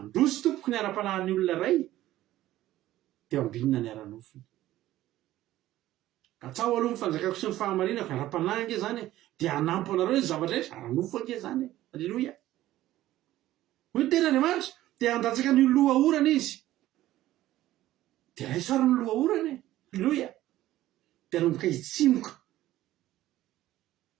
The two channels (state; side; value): quieter; left; 14.8 dB